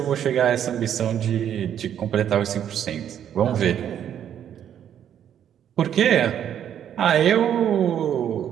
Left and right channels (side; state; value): left; quieter; 9.7 dB